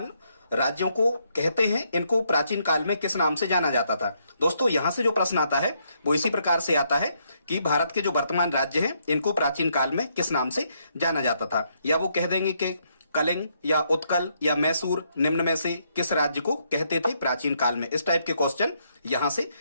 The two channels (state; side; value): inverted; both; correlation -0.75